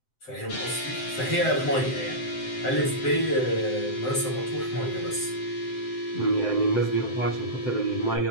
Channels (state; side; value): late; right; 7.8 ms